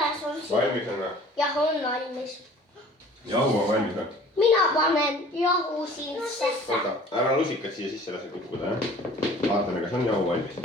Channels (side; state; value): both; normal; correlation 0.48